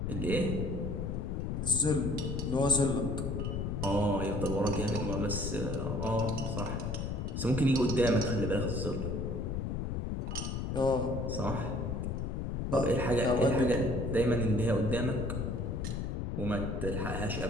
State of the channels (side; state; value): left; noise; rumble, 2 dB below the sound